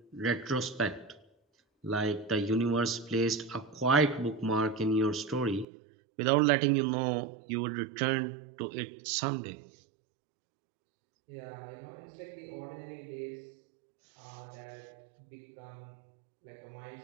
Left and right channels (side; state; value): left; drops out; at 5.7 s